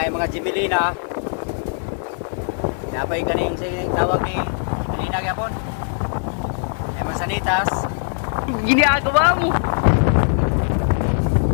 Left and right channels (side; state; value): right; silent; 65 dB below the other